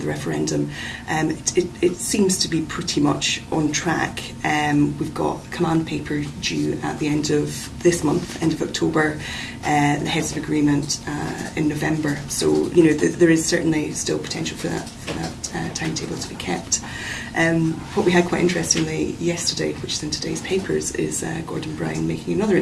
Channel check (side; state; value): both; identical; correlation 1.00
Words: the referendum, it seems to be pretty much on track. We've got command paper due at the end of this month, end of October, the heads of agreement in November. So, you know, there is certainly still potential for that timetable to be kept. What we had quite interestingly yesterday, which is in today's papers, is Gordon Brown making another